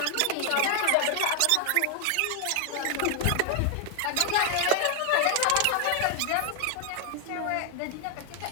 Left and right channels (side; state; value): both; different; correlation 0.00